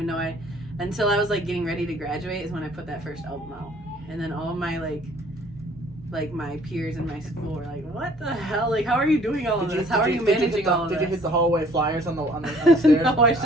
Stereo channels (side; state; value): both; normal; correlation 0.57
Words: know until I was like getting ready to graduate is when I put that first album out. And then all of my like my peers in my school were like, what the hell? Like, how are you doing all of this? How are you managing all of this? Did you hit the hallway flyers on the stairs? No, I